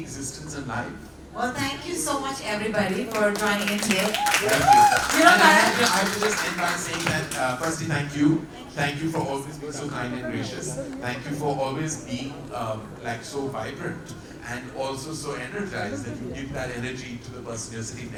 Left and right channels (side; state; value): both; identical; correlation 1.00